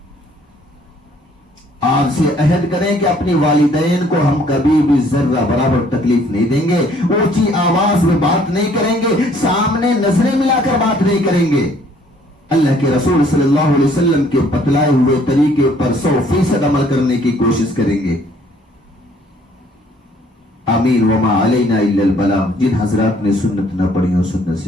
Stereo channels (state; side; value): normal; both; correlation 0.61